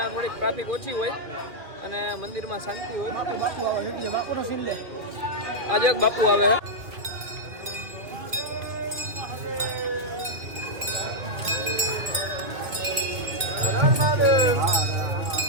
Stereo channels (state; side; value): late; left; 2.2 ms